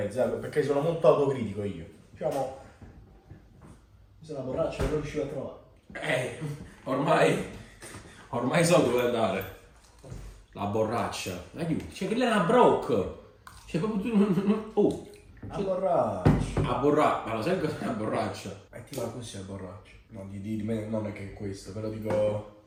perché sono molto autocritico io. Diciamo. Se la borraccia non riuscivo a trovare. Ormai so dove andare. La borraccia. Aiuto. Cioè che lei è una broc. Cioè proprio tu. Oh. La borraccia. A borraccia. Ma lo sai cos'è la borraccia? E ti va così la borraccia. No, di me non è che è questo, però dico.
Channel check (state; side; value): identical; both; correlation 1.00